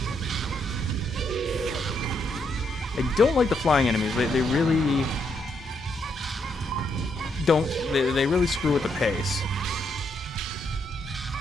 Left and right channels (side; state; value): both; normal; correlation 0.77